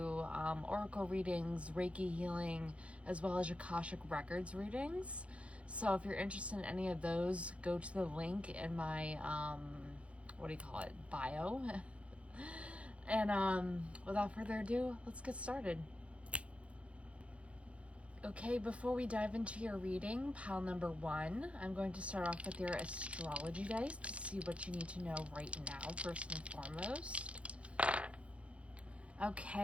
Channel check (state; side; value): late; left; 0.062 ms